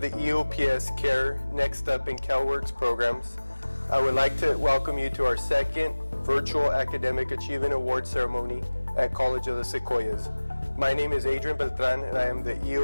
EOPS CARE Next Up and CalWORKS programs, I would like to welcome you to our second virtual Academic Achievement Award ceremony at College of the Sequoias. My name is Adrian Beltran, and I am the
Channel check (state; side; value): inverted; both; correlation -1.00